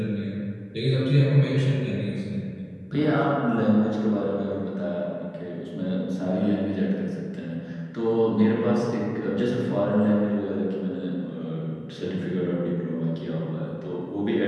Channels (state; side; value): identical; both; correlation 1.00